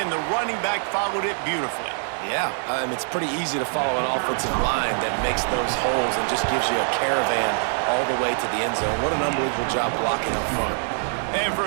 the running back followed it beautifully. Yeah, it's pretty easy to follow an offensive line that makes those holes and just gives you a caravan all the way to the end zone. What an unbelievable job blocking up front. And for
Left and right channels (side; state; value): left; silent; 63 dB below the other